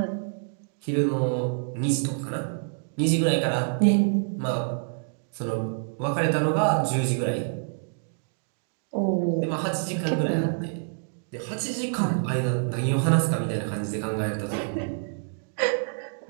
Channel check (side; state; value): left; silent; digital silence